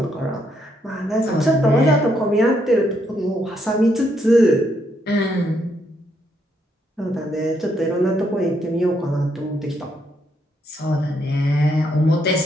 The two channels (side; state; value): both; normal; correlation 0.75